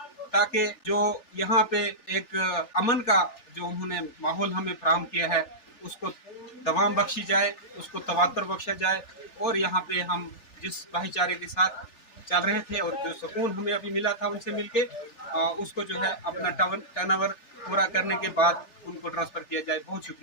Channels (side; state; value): right; late; 3.4 ms